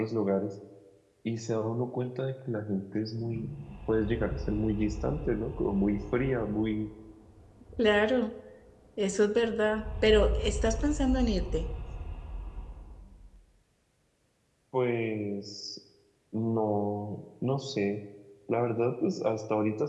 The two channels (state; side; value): identical; both; correlation 1.00